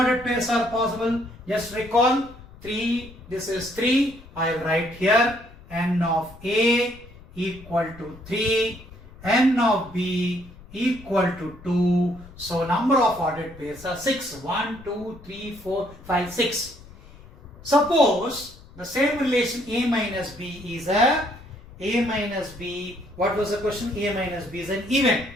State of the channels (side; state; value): left; noise; rumble, 20 dB below the sound